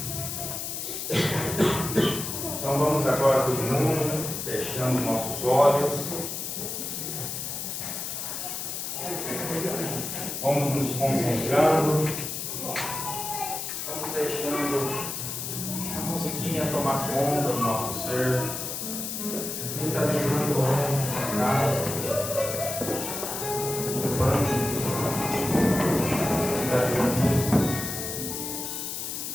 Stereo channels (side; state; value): left; noise; hiss, 5 dB below the sound